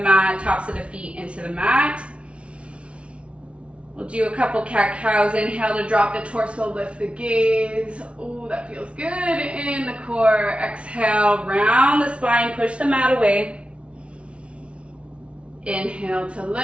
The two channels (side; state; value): left; late; 0.060 ms